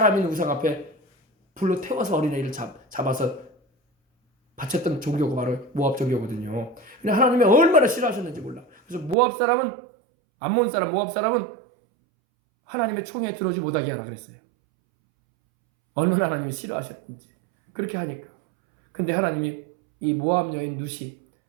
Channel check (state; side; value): drops out; left; at 9.2 s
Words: 우상 앞에 불로 태워서 어린아이를 잡아서 바쳤던 종교가 바로 모압 종교거든요. 근데 하나님이 얼마나 싫어하셨는지 몰라. 그래서 암몬 사람 모압 사람은 하나님의 총에 들어오지 못하게 하라 그랬어요. 얼마나 하나님이 싫어하셨는지. 그렇게 하니까. 근데 하나님이 이 모압 여인 룻이